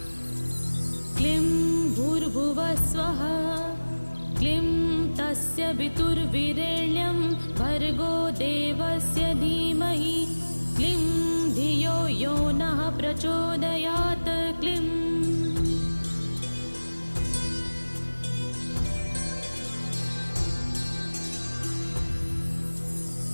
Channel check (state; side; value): inverted; both; correlation -1.00